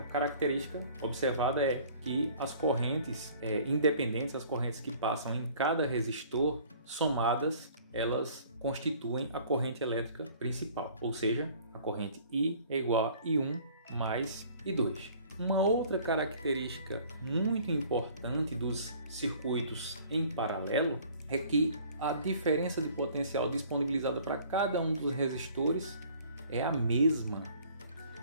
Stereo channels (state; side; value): inverted; both; correlation -0.53